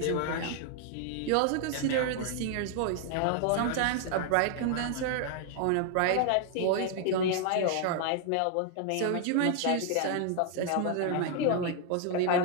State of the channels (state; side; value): different; both; correlation 0.00